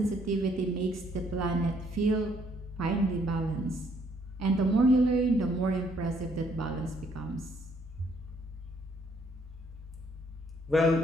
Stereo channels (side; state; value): both; normal; correlation 0.67